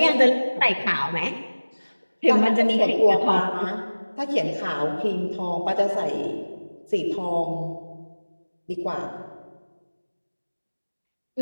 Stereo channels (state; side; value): inverted; both; correlation -1.00